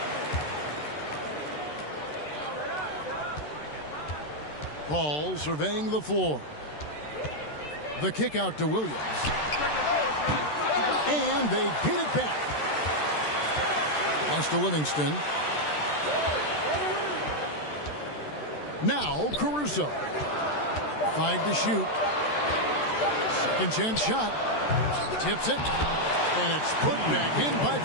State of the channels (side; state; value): right; late; 13 ms